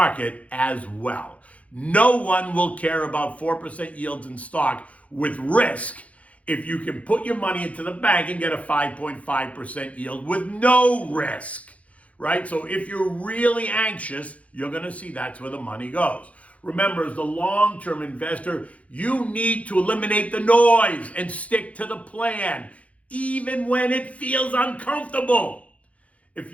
as well. No one will care about 4% yields in stock with risk if you can put your money into the bank and get a 5.5% yield with no risk, right? So if you're really anxious, you're going to see that's where the money goes. Remember, as the long-term investor, you need to eliminate the noise and stick to the plan, even when it feels uncomfortable. If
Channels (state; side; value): late; right; 0.065 ms